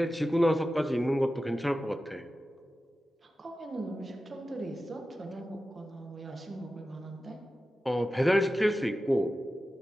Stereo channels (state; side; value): normal; both; correlation 0.93